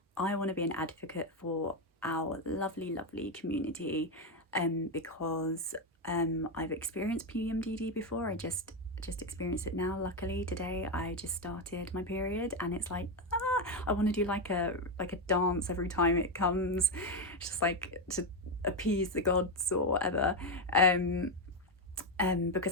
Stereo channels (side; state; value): both; normal; correlation 0.07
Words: I want to be an advocate for our lovely community because I've experienced PMDD before. I just experienced it now. Luckily today I just started my period and it's like I want to do like a dance every time it comes, just like to appease the gods or whatever.